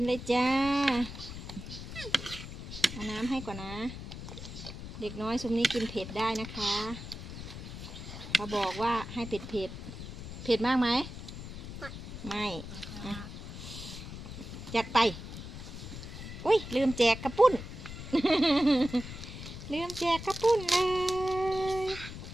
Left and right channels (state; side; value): noise; left; rumble, 10 dB below the sound